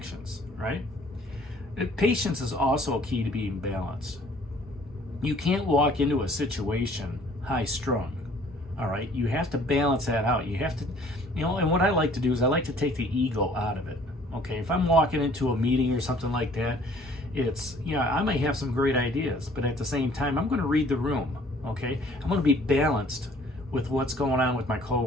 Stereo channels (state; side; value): normal; both; correlation 0.56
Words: right? Patience is also key to being balanced. You can't walk into a situation high strung. All right, you have to balance that out. You have to, you know, and what I like to do is I like to take the ego out of it. Okay, if I'm walking into a meeting or something like that, it's, you know, I may have some great ideas, but at the same time, I'm going to read the room. Okay, I'm going to be balanced with what's going on with my